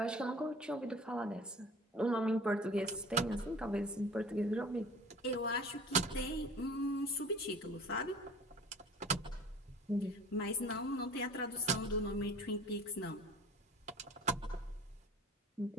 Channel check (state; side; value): normal; both; correlation 0.43